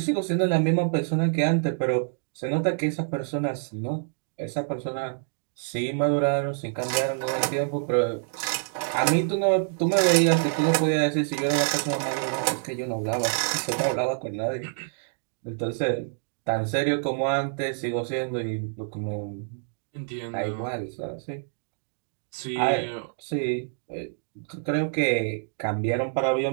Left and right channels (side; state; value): left; silent; digital silence